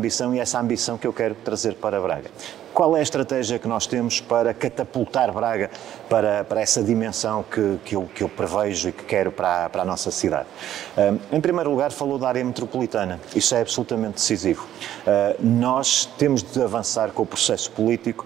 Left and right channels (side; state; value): left; quieter; 11.7 dB